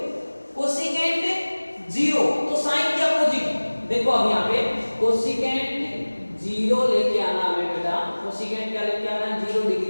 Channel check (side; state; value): both; inverted; correlation -1.00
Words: देखो अब यहाँ पे कोसिकेंट 0 लेके आना हमें बेटा, कोसिकेंट क्या लेके आना, 0